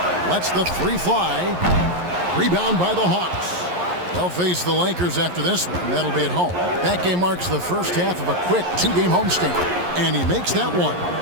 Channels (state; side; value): late; left; 11 ms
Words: Lets the three fly. Rebound by the Hawks. They'll face the Lakers after this one. That'll be at home. That game marks the first half of a quick 2-game homestand. And he makes that one.